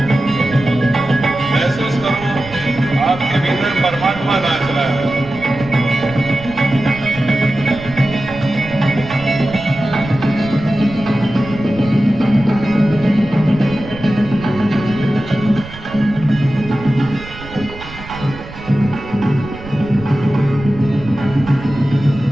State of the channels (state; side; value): noise; right; rumble, 15 dB below the sound